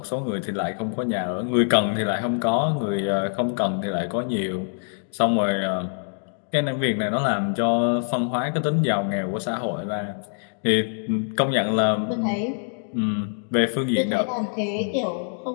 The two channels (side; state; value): right; silent; digital silence